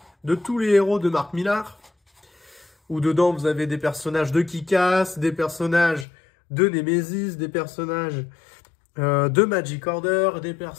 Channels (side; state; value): right; drops out; at 6.1 s